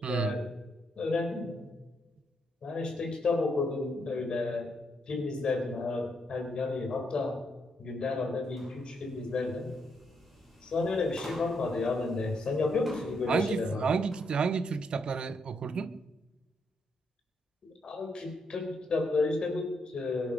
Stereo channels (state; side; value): normal; both; correlation 0.77